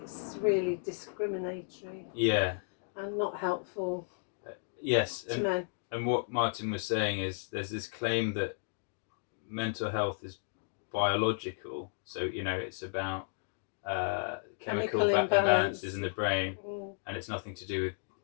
really discriminatory. Yeah. And not helpful. Yes, to men. And what Martin was saying is there's this claim that mental health is biological, so it's about chemical imbalances in the brain, and it's nothing to do with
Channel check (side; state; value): right; silent; digital silence